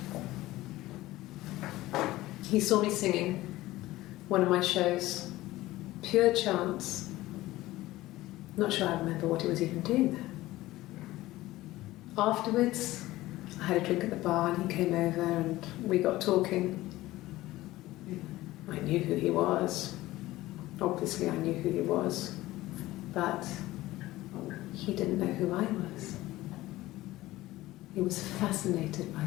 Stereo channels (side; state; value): right; quieter; 17.2 dB